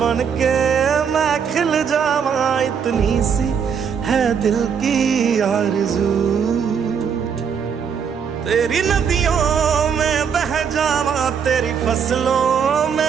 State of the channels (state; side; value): quieter; left; 7.0 dB